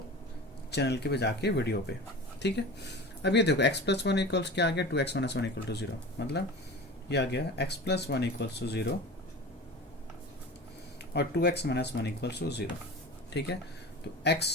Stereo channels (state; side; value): normal; both; correlation 0.34